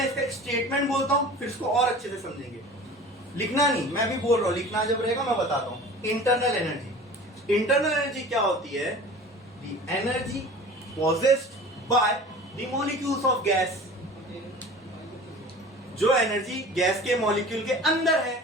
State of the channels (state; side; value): normal; both; correlation 0.41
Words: इसका स्टेटमेंट बोलता हूं, फिर इसको और अच्छे से समझेंगे। लिखना नहीं, मैं भी बोल रहा हूं, लिखना जब रहेगा मैं बताता हूं। इंटरनल एनर्जी, इंटरनल एनर्जी क्या होती है? The energy possessed by the molecules of gas। जो एनर्जी गैस के मॉलिक्यूल के अंदर